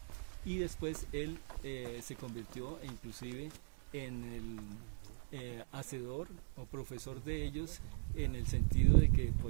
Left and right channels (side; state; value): left; silent; digital silence